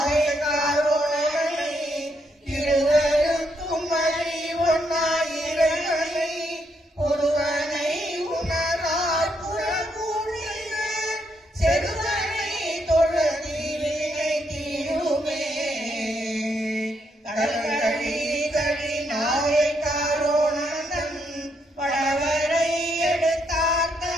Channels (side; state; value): both; normal; correlation 0.76